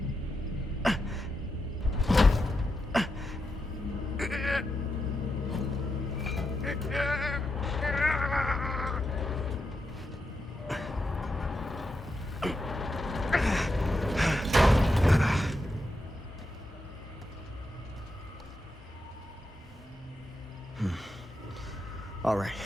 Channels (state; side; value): normal; both; correlation 0.86